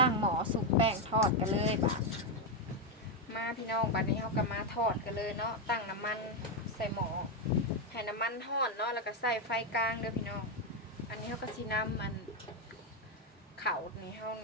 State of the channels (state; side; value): normal; both; correlation 0.05